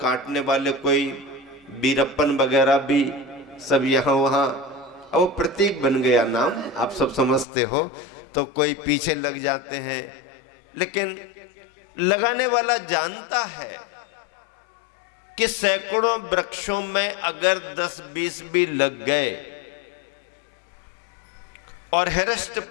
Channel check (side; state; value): right; drops out; at 7.5 s